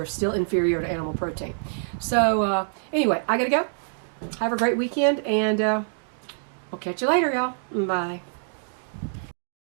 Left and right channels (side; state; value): left; silent; digital silence